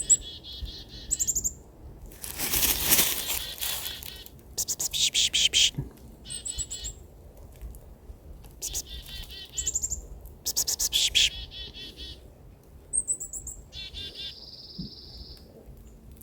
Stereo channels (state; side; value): identical; both; correlation 1.00